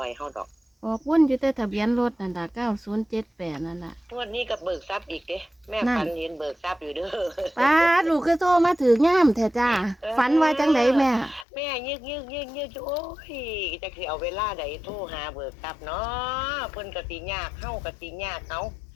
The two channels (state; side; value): drops out; right; at 11.5 s